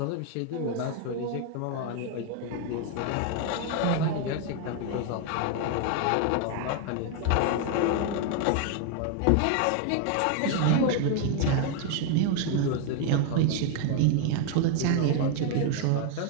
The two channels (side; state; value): both; different; correlation 0.00